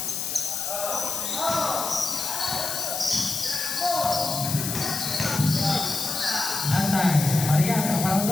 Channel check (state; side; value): noise; left; hiss, 3 dB below the sound